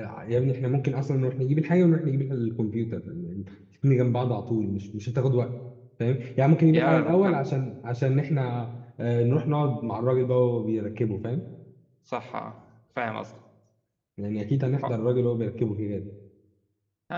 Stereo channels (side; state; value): both; identical; correlation 1.00